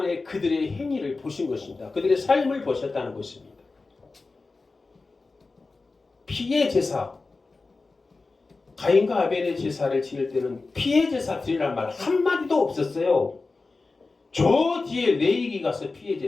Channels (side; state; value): right; quieter; 3.8 dB